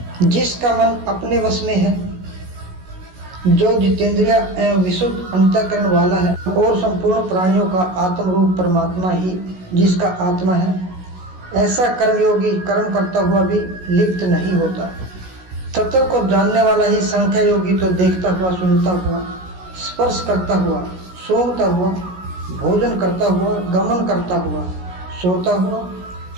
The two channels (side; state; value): left; late; 16 ms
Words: जिसका मन अपने वश में है, जो जितेंद्रिय एवं विशुद्ध अंतःकरण वाला है, और संपूर्ण प्राणियों का आत्म रूप परमात्मा ही जिसका आत्मा है, ऐसा कर्मयोगी कर्म करता हुआ भी लिप्त नहीं होता। तत्व को जानने वाला ही संख्या योगी तो देखता हुआ, सुनता हुआ, स्पर्श करता हुआ, सूंघता हुआ, भोजन करता हुआ, गमन करता हुआ, सोता हुआ,